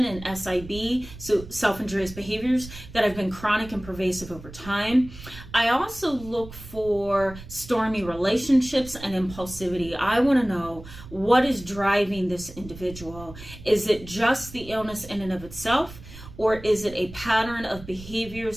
and SIB, so self-injurious behaviors that have been chronic and pervasive over time. I also look for stormy relationships and impulsivity. I want to know what is driving this individual. Is it just the illness in and of itself? Or is it a pattern of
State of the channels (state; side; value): noise; right; rumble, 15 dB below the sound